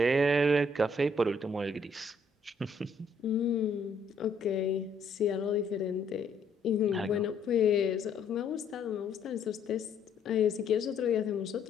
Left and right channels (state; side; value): quieter; right; 3.2 dB